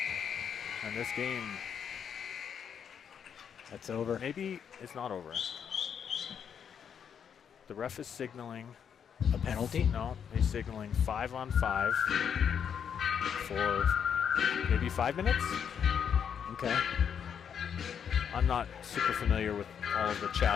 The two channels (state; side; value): quieter; right; 7.8 dB